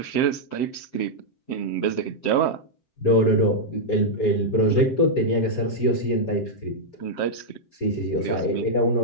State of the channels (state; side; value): late; right; 7.7 ms